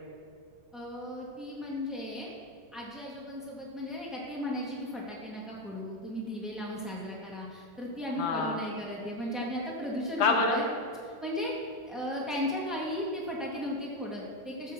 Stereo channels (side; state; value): both; normal; correlation 0.12